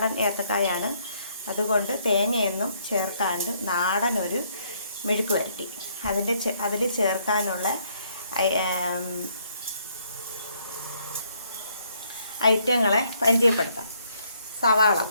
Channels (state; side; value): inverted; both; correlation -0.69